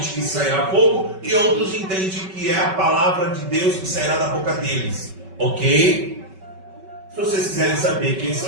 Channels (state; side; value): late; left; 5.3 ms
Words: que sairá fogo e outros entendem que é a palavra de Deus que sairá da boca deles. Ok? Se vocês quiserem saber quem